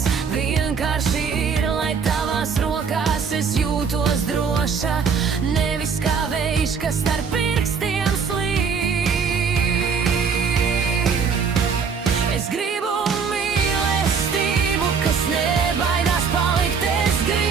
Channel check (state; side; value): quieter; left; 5.9 dB